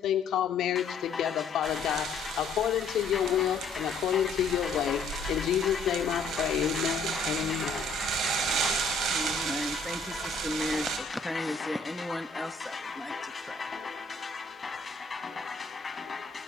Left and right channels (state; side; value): quieter; right; 3.7 dB